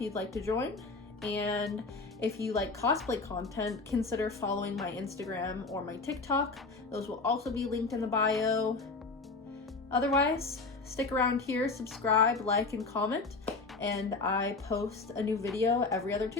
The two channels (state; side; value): quieter; right; 3.9 dB